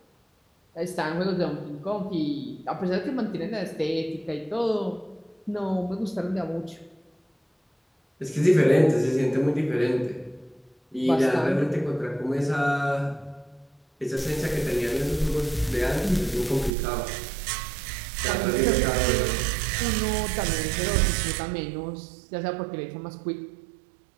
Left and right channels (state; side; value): drops out; left; at 16.7 s